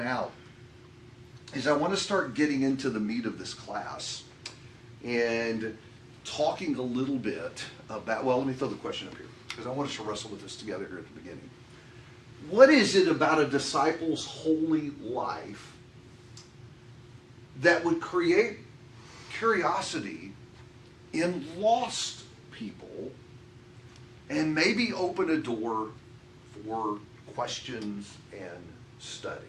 out is I want to start getting into the meat of this class and talking a little bit about, well, let me throw the question up here because I want us to wrestle with this together here at the beginning. What is it about a disciple's holy life that would create curiosity in lost people and maybe open a door for questions and study?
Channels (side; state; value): both; identical; correlation 1.00